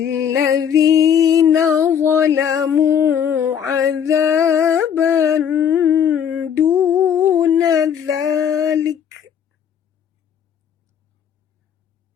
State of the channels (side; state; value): right; quieter; 8.3 dB